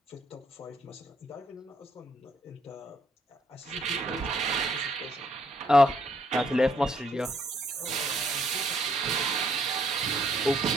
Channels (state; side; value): normal; both; correlation 0.70